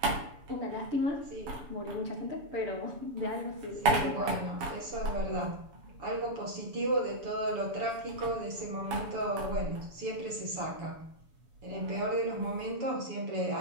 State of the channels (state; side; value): late; left; 7.1 ms